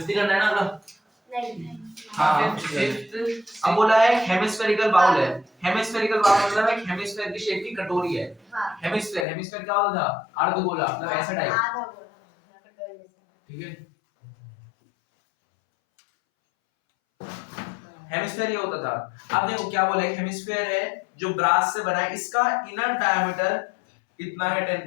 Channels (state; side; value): drops out; right; at 9.2 s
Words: करना है ना अगला? नहीं। हाँ, फिफ्थ अब बोला है हेमिस्फेरिकल बाउल है। हेमिस्फेरिकल बाउल मतलब एक हेमिस्फेयर की शेप की कटोरी है। हाँ। हेमिस्फेयर क्या होता था? अर्धगोला, मतलब ऐसा टाइप। आधा गोला कटोरी जैसा। ठीक है, हेमिस्फेयर ये होता था। अब देखो क्या बोला है, हेमिस्फेयर है जो ब्रास से बना है, इसका इनर डायमीटर कितना है